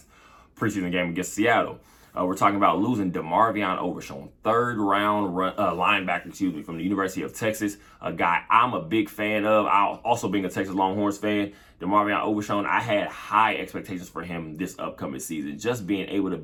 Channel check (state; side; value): identical; both; correlation 1.00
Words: preseason game against Seattle. We're talking about losing DeMarvion Overshown, third-round linebacker, from the University of Texas, a guy I'm a big fan of. Also being a Texas Longhorns fan, DeMarvion Overshown, I had high expectations for him this upcoming season. Just being able to